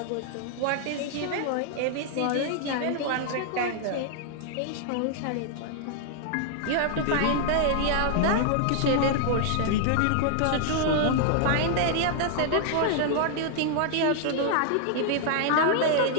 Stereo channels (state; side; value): different; both; correlation 0.00